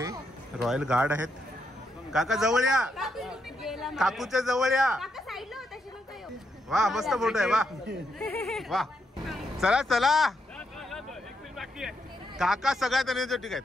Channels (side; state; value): both; normal; correlation 0.80